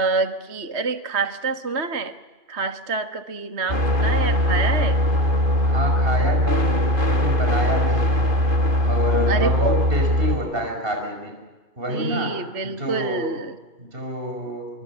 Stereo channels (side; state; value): left; late; 2.5 ms